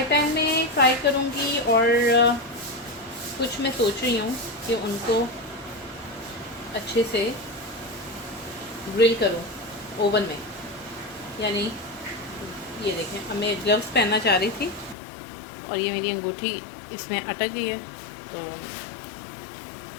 पैन में फ्राई करूंगी और कुछ मैं सोच रही हूँ कि उनको अच्छे से ग्रिल करूँ ओवन में। यानी ये देखें, अब मैं ग्लव्स पहनना चाह रही थी और ये मेरी अंगूठी इसमें अटक गई है तो।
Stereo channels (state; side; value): drops out; right; at 15.0 s